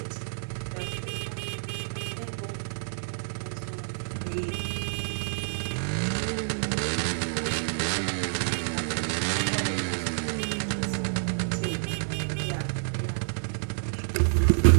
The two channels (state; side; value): silent; left; digital silence